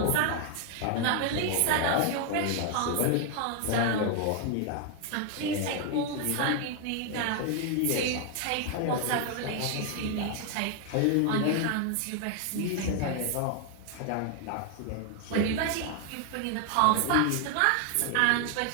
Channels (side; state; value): both; different; correlation 0.00